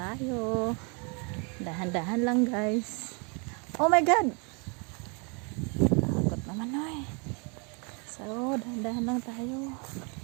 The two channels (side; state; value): left; quieter; 34.0 dB